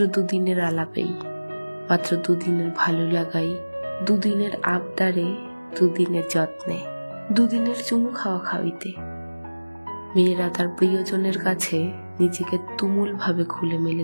দুদিনের আলাপেই, মাত্র দুদিনের ভালো লাগাই, দুদিনের আবদারে, দুদিনের যত্নে, দুদিনের চুমু খাওয়া খাওয়িতে মেয়েরা তার প্রিয়জনের কাছে নিজেকে তুমুল ভাবে খুলে মেলে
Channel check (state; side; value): inverted; both; correlation -1.00